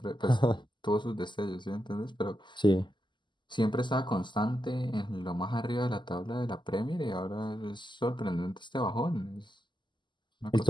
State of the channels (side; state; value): right; late; 0.22 ms